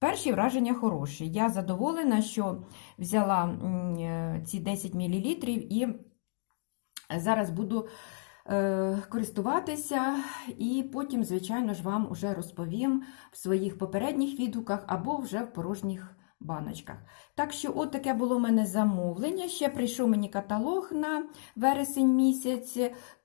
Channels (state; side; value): silent; right; digital silence